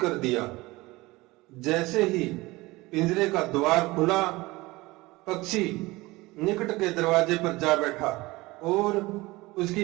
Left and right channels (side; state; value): left; quieter; 21.0 dB